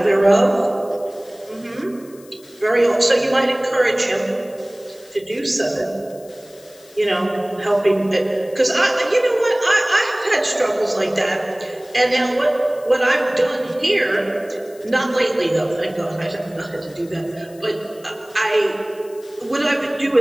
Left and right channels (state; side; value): noise; left; hiss, 25 dB below the sound